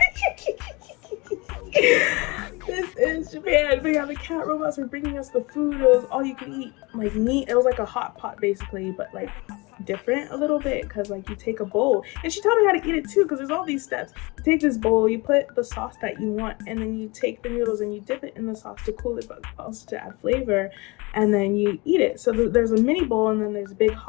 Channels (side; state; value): right; quieter; 25.6 dB